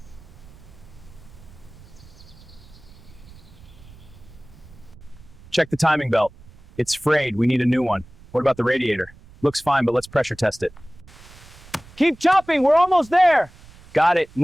Check the timing belt. It's frayed, we need a new one. What about the radiator? Looks fine, but let's pressure test it. Keep chopping, we're almost there! Got it,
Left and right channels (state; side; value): noise; right; rumble, 22 dB below the sound